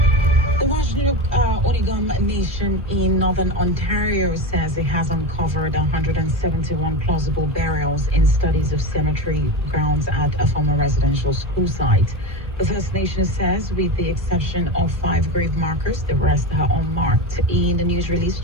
The Oregon Nation in Northern Ontario says it has uncovered 171 plausible burials in studies of cemetery grounds at a former residential school site. The First Nation says, with the exception of 5 grave markers, the rest are unmarked. In the news release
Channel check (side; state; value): both; normal; correlation 0.21